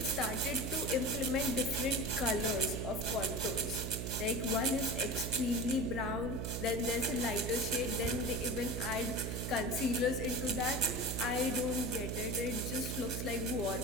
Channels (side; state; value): right; noise; hum, 3 dB below the sound